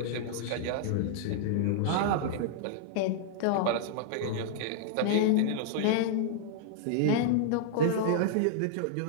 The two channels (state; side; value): different; both; correlation -0.01